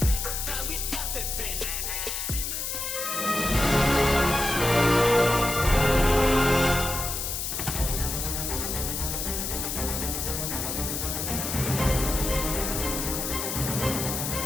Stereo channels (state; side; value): noise; left; hiss, 3 dB below the sound